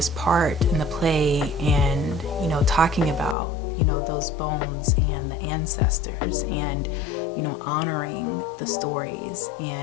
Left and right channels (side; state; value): right; drops out; at 3.4 s